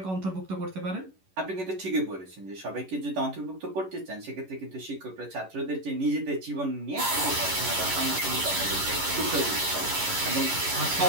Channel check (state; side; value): late; left; 11 ms